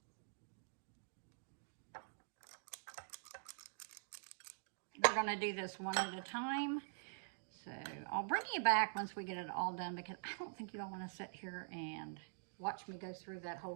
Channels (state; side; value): silent; left; digital silence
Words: We're going to do this one at a time. So I'll bring you back once we get it all done, because I don't think you all want to sit here and watch me go through that